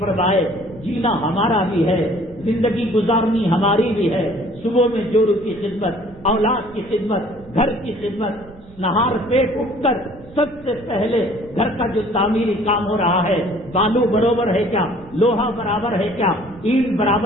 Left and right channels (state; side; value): noise; right; rumble, 22 dB below the sound